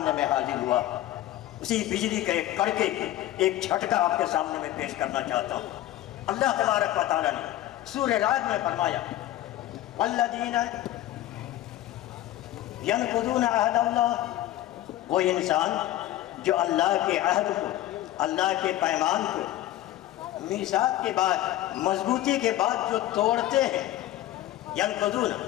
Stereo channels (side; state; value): right; quieter; 14.2 dB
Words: میں حاضر ہوا۔ اسی بجلی کا ایک کڑکے ایک جھٹکا آپ کے سامنے میں پیش کرنا چاہتا ہوں۔ اللہ تبارک و تعالیٰ نے سورہ رعد میں فرمایا والذین ینقضون عہد اللہ، وہ انسان جو اللہ کے عہد کو، اللہ کے پیمان کو میثاق کے بعد، مضبوطی کے بعد جو توڑتے ہیں، ینقضون